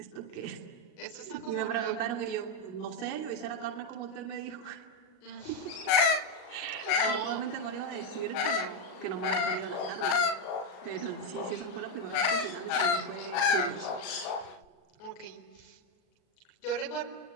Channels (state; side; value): late; right; 38 ms